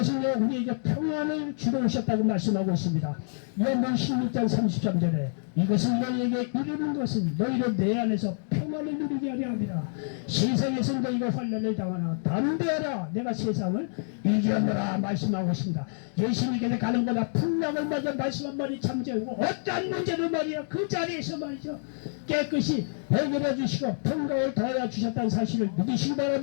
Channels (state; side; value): silent; right; digital silence